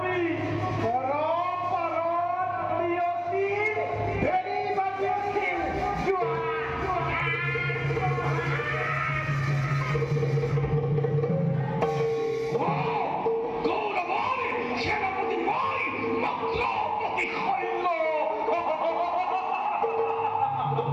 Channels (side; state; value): both; identical; correlation 1.00